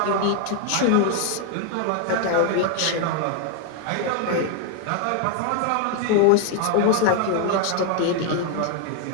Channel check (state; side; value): different; both; correlation 0.00